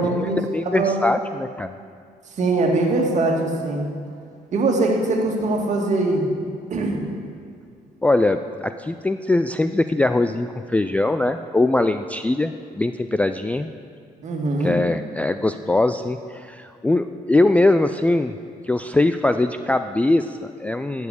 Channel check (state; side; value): normal; both; correlation 0.81